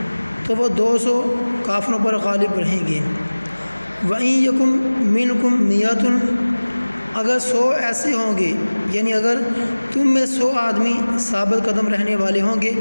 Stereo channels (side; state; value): both; inverted; correlation -1.00